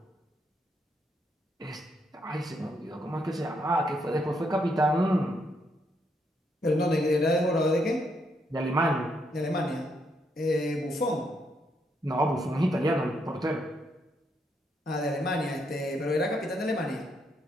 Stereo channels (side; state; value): both; normal; correlation 0.76